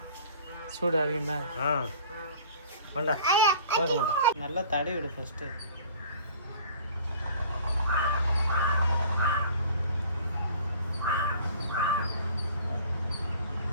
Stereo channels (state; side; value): inverted; both; correlation -0.48